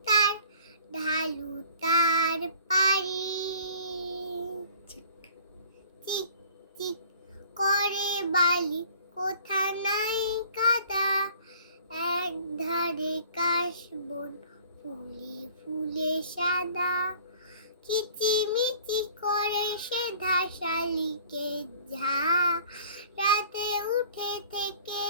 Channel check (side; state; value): both; inverted; correlation -0.50